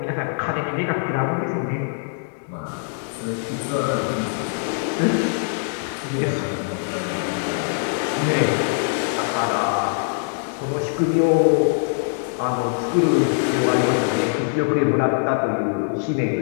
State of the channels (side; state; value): right; silent; 64 dB below the other